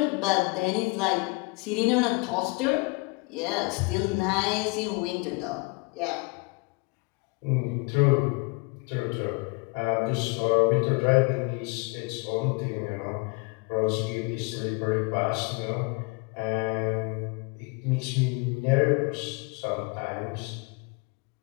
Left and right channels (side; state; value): right; quieter; 29.4 dB